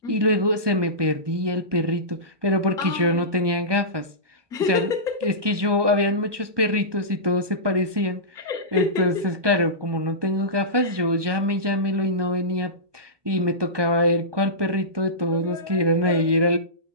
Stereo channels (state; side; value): late; left; 1.2 ms